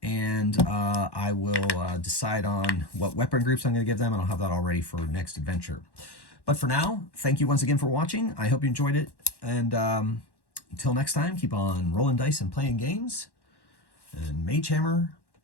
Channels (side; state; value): right; late; 1.1 ms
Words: And I will decide on what weapon groups I'm going to give them, and I'll have that all ready for next adventure. But for now, thank you once again for watching. I hope you enjoyed it. And until next time, keep on rolling dice and playing games. And Magehammer